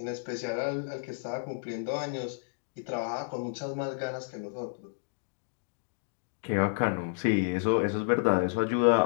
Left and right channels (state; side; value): silent; right; digital silence